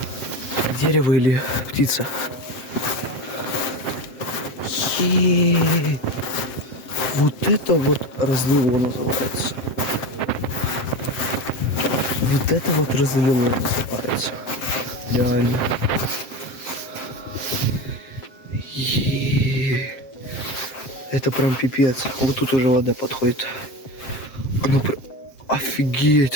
Дерево или птица. Вот это вот разлило называется. Вот это вот разлило называется. Реально. Это прям пипец. Вот тут уже вода подходит. Она прям...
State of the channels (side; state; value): right; late; 7.6 ms